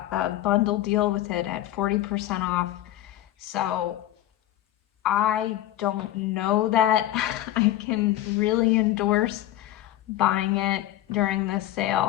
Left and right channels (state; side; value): quieter; right; 14.0 dB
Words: a bundle deal with it at 40% off. So I don't know that I can really endorse buying it during this